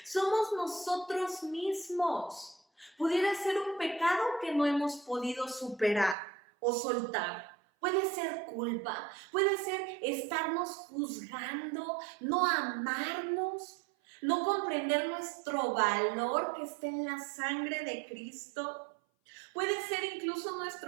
Somos nosotros mismos. Pudiera ser un pecado que no hemos podido superar o soltar. Puede ser culpa, puede ser estarnos juzgando, no amarnos, no comprender nuestro valor que está en la sangre de Cristo. Puede ser incluso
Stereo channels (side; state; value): left; drops out; at 6.2 s